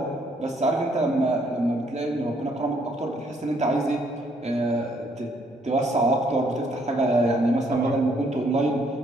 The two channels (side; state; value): both; normal; correlation 0.68